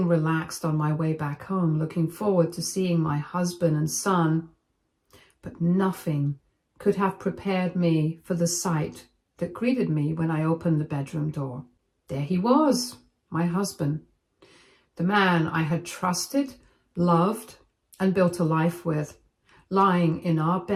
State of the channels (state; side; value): identical; both; correlation 1.00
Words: relaxed on my way back home, looking forward to seeing my husband and son, but nothing could have prepared me for the sight that greeted me when I opened the bedroom door. There he was, my husband, the man I had trusted, loved, and built a life with, lying in our